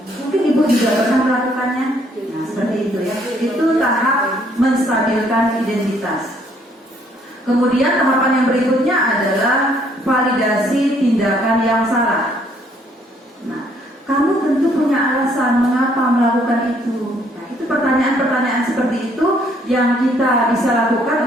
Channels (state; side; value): normal; both; correlation 0.66